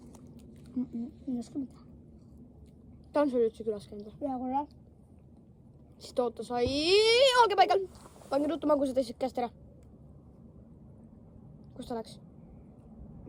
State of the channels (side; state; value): both; identical; correlation 1.00